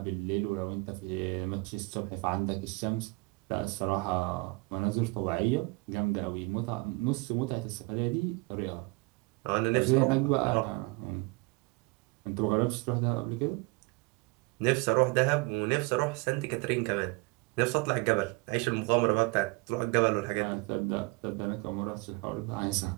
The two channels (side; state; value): left; quieter; 26.4 dB